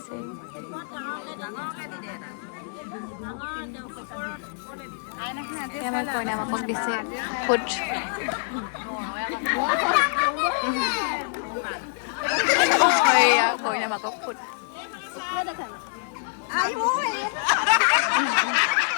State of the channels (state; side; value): silent; right; digital silence